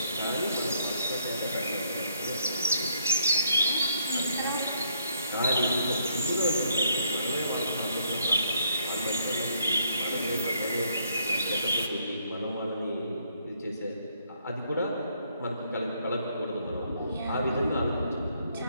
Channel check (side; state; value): both; inverted; correlation -0.70